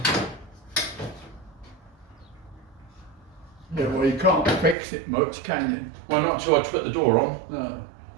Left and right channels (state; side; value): drops out; left; at 4.8 s